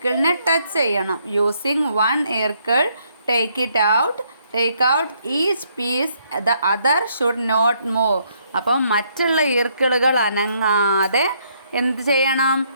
ടച്ച് ചെയ്യണം. യൂസിങ് 1 ഈർക്കിൾ take out each piece. The other should not move. അപ്പോൾ മറ്റുള്ള ഈർക്കിളുകൾ അനങ്ങാതെ എന്ത് ചെയ്യണം?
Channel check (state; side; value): inverted; both; correlation -0.71